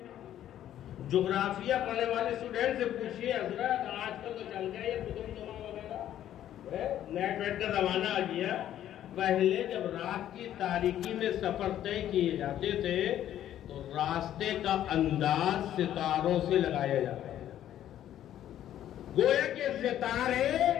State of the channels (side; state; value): right; quieter; 11.6 dB